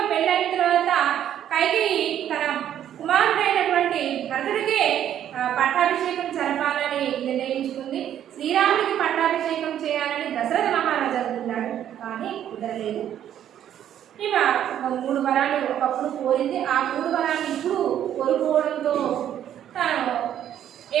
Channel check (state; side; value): quieter; left; 10.6 dB